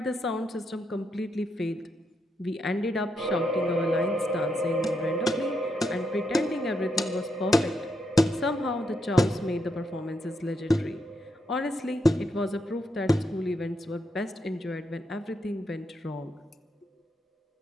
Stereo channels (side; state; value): both; normal; correlation 0.81